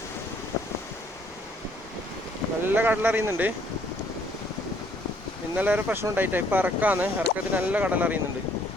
നല്ല കടലറിയുന്നുണ്ട്. ഇന്നലെ ഒരു പ്രശ്നം ഉണ്ടായിട്ടാ. ഇപ്പം ഇറക്കത്തിന് നല്ല കടലറിയുന്നുണ്ട്.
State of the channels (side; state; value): both; normal; correlation 0.64